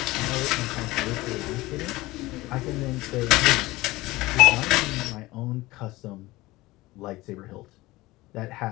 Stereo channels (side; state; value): right; quieter; 19.6 dB